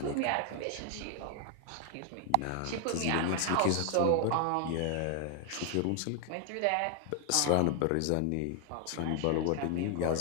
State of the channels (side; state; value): both; different; correlation 0.00